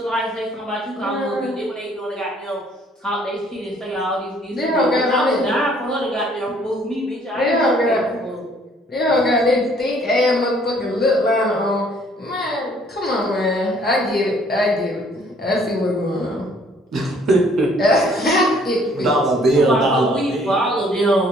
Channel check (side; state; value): both; normal; correlation 0.60